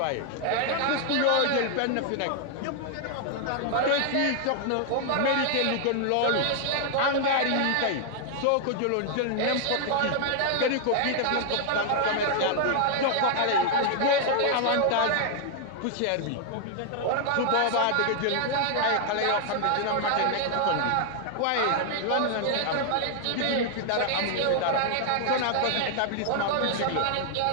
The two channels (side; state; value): both; different; correlation 0.00